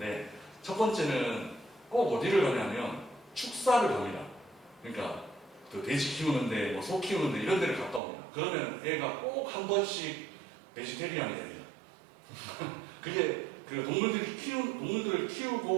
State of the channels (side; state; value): left; drops out; at 8.0 s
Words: 첫 번째는 꼭 어디를 가냐면 축사를 갑니다. 그러니까 돼지 키우는데 소 키우는데 이런 데를 갔다 옵니다. 그러면 애가 꼭 한 번씩 베지테리안이 됩니다. 그게 동물들을